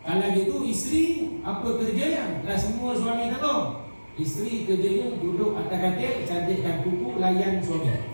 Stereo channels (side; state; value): both; inverted; correlation -1.00